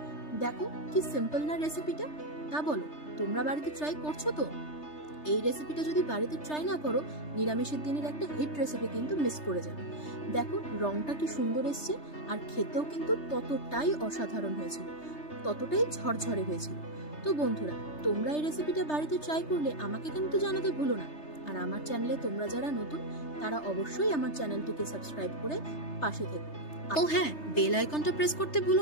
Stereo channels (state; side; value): late; right; 3.3 ms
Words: দেখো কি সিম্পল না রেসিপিটা। তা বলো, তোমরা বাড়িতে ট্রাই করছো তো? এই রেসিপিটা যদি বাড়িতে ট্রাই না করো, নিরামিষের দিনের একটা হিট রেসিপি কিন্তু মিস করে যাবে। দেখো রংটা কি সুন্দর এসছে, আর খেতেও কিন্তু ততটাই অসাধারণ হয়েছিল, ততটাই ঝরঝরে হয়েছিল। তো বন্ধুরা, তোমরা এই রেসিপিটা বাড়িতে ট্রাই করলে আমাকে কিন্তু জানাতে ভুলো না। আর আমার চ্যানেলে তোমরা যারা নতুন, তারা অবশ্যই আমার চ্যানেলটিকে সাবস্ক্রাইব করে পাশে থেকো। ও হ্যাঁ, বেল আইকনটা প্রেস করতে ভুলো